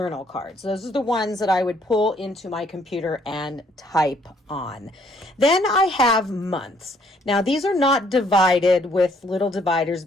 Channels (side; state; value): both; normal; correlation 0.65